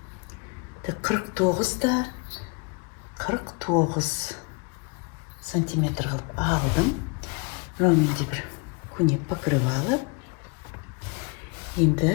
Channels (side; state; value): right; quieter; 31.5 dB